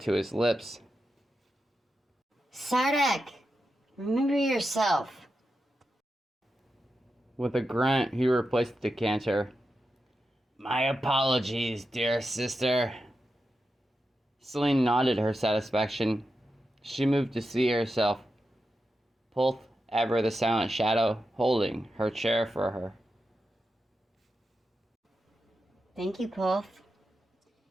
his lips. Sardak, remember yourself. With a grunt, he replaced the decanter. My apologies, dear sister. Celine nodded her satisfaction. She moved to see herself. Pulth, ever the silent shadow, holding her chair for her. Thank you, Pulth.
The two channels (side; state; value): both; normal; correlation 0.89